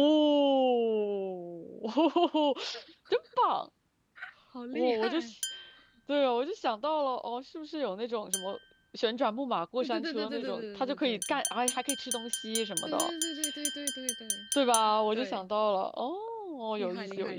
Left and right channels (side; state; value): both; identical; correlation 1.00